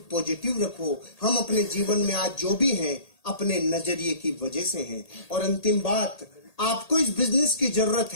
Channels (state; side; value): late; right; 1.8 ms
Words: पॉजिटिव रखो। हम अपने जीवन में आज जो भी हैं अपने नजरिए की वजह से हैं। और अंतिम बात, आपको इस बिजनेस की जरूरत